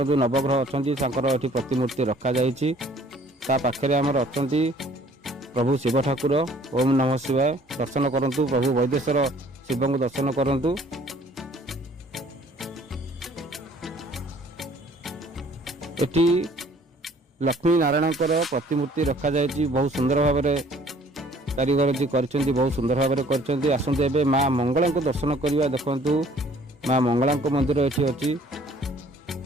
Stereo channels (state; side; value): normal; both; correlation 0.56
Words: जो नवग्रह अच्छा ये प्रतिमूर्ति रखा पाखे आमर अच्छा प्रभु शिव ठाकुर। ओम नमः शिवाय। दर्शन करंतु प्रभु वैदेश्वर शिव को दर्शन करंतु। एटी लक्ष्मी नारायण प्रतिमूर्ति रखा बहुत सुंदर भाव में कारीगर जी कर बहुत सुंदर भाव में कर। आसतु ए माँ मंगला को दर्शन करवा। देखु माँ मंगला मंदिर ये अच्छी